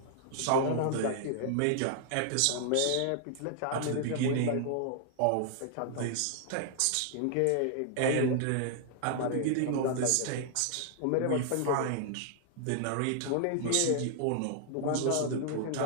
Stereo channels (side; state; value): both; different; correlation -0.01